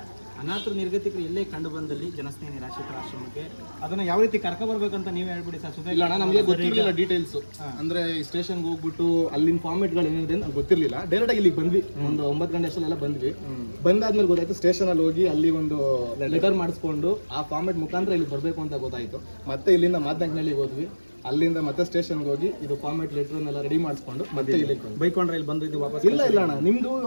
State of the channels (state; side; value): inverted; both; correlation -1.00